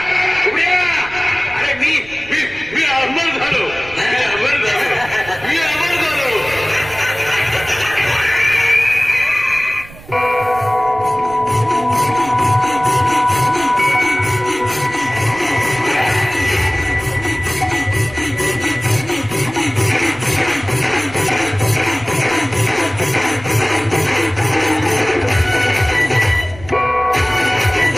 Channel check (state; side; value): noise; right; rumble, 19 dB below the sound